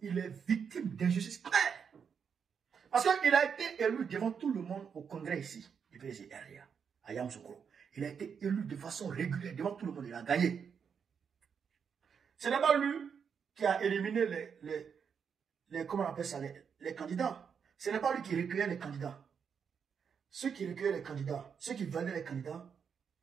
est victime d'injustice claire. Parce qu'il a été élu devant tout le monde au congrès ici, du PDC RDA, à Yamoussoukro. Il a été élu de façon régulière devant tout le monde. Il a gagné. Ce n'est pas lui qui a éliminé comment on appelle ça, les candidats. Ce n'est pas lui qui recueillait les candidats. Ceux qui recueillaient les candidats, ceux qui validaient les candidats,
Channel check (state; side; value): quieter; left; 6.8 dB